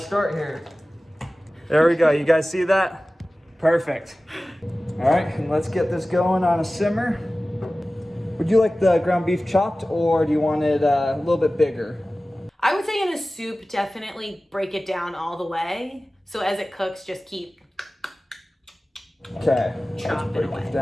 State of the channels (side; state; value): both; normal; correlation 0.97